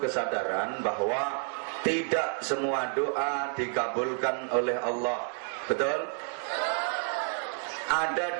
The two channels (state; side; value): silent; left; 56 dB below the other